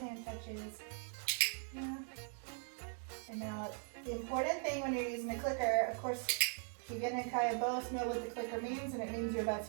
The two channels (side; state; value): left; silent; 51 dB below the other